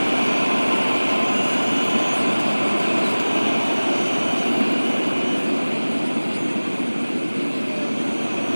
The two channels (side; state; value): both; inverted; correlation -1.00